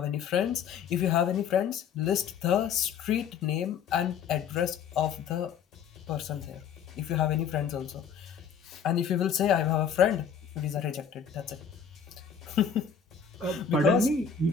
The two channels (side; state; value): right; quieter; 7.1 dB